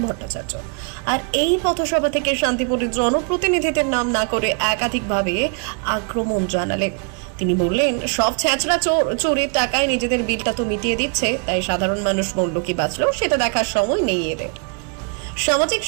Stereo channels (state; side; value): quieter; left; 39.9 dB